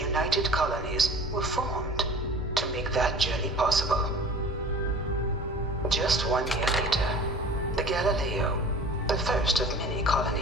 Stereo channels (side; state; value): both; normal; correlation 0.42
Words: Colonies were formed to make that journey possible. Just 1 year later, the Galileo, the first of many colony